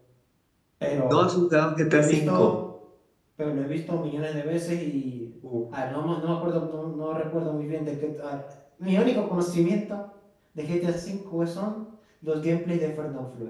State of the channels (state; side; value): identical; both; correlation 1.00